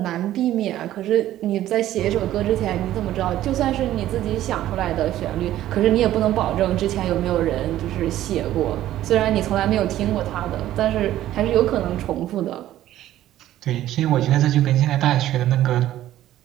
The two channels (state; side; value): quieter; left; 13.4 dB